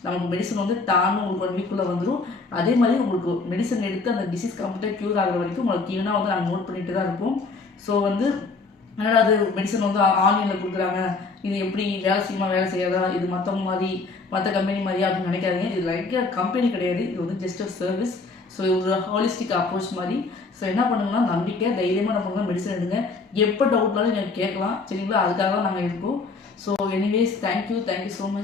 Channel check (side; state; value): right; quieter; 4.0 dB